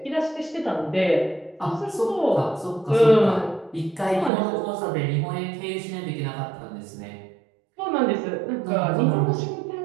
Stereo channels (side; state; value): left; drops out; at 4.3 s